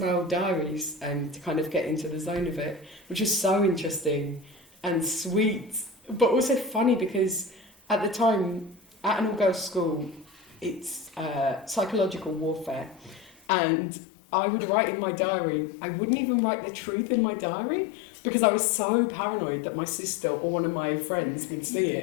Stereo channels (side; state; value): right; drops out; at 13.4 s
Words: old diaries to kind of get into the zone of it, which was so interesting and sweet, but also funny, because at the time, at an all-girls school, it's psychological warfare. And I would write in my diary, I wouldn't even write the truth in my diary, because I was so paranoid that my sister or one of my friends would see